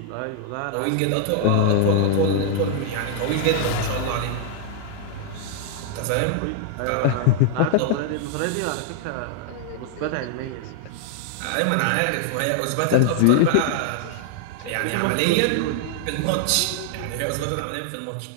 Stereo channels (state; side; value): different; both; correlation -0.01